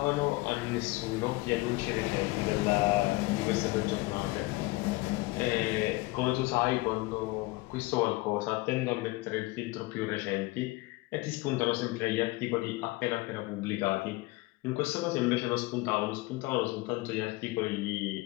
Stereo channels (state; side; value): quieter; right; 21.6 dB